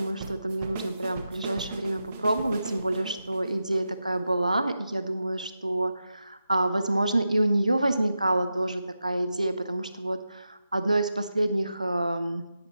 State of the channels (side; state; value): both; inverted; correlation -0.89